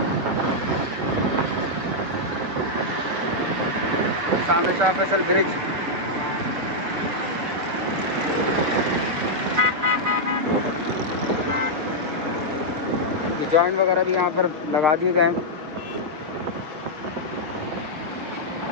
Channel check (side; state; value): left; late; 6.4 ms